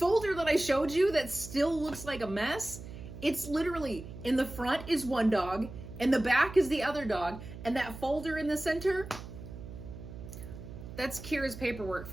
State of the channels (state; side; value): noise; right; hum, 12 dB below the sound